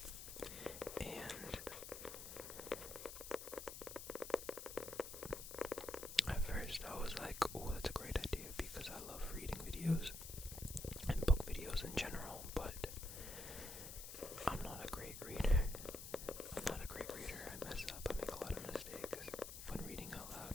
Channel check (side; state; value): left; noise; hiss, 9 dB below the sound